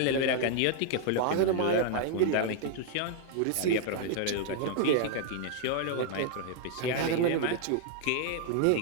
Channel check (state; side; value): different; both; correlation 0.00